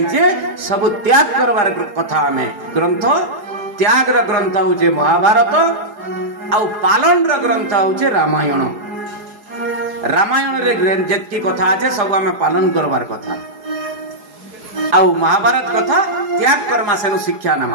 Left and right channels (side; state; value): left; late; 4.8 ms